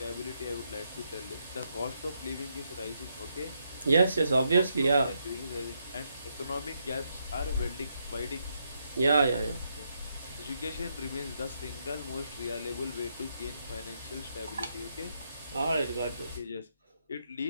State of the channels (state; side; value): inverted; both; correlation -0.79